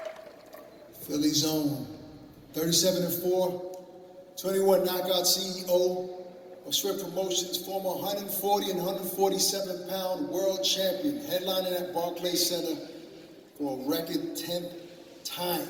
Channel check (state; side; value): identical; both; correlation 1.00